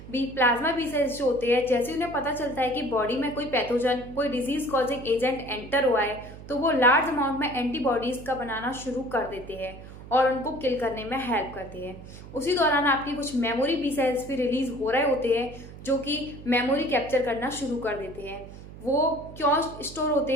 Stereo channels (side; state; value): right; noise; hum, 15 dB below the sound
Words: Plasma B cells जो होते हैं, जैसे उन्हें पता चलता है कि बॉडी में कोई पैथोजन, कोई डिजीज कॉजिंग एजेंट एंटर हुआ है, तो वो लार्ज अमाउंट में एंटीबॉडीज का बनाना शुरू कर देते हैं और उनको किल करने में हेल्प करते हैं। उसी दौरान आपकी कुछ मेमोरी बी सेल्स भी रिलीज हो रहे होते हैं जो कि मेमोरी कैप्चर करना शुरू कर देते हैं। वो क्यों स्टोर होते